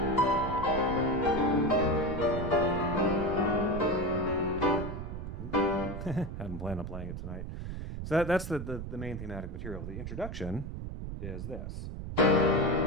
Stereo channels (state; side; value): noise; right; rumble, 7 dB below the sound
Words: hadn't planned on playing it tonight. So that's the main thematic material. The introduction is this.